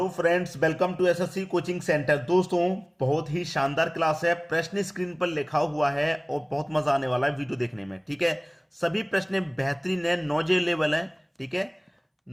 friends, welcome to SSC coaching centre. दोस्तों, बहुत ही शानदार क्लास है। प्रश्न स्क्रीन पर लिखा हुआ है और बहुत मजा आने वाला है वीडियो देखने में। ठीक है, सभी प्रश्न बेहतरीन है, नॉलेज लेवल है। ठीक है,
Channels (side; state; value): both; identical; correlation 1.00